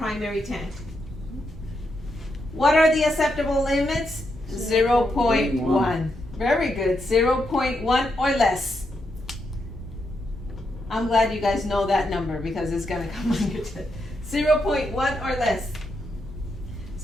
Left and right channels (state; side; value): normal; both; correlation 0.82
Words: tank. What are the acceptable limits? 0.1. Very good. 0.1 or less. I'm glad you guys know that number because it's gonna come on your test. 0.1 or less.